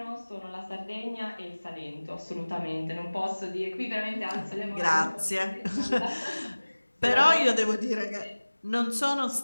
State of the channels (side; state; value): both; inverted; correlation -1.00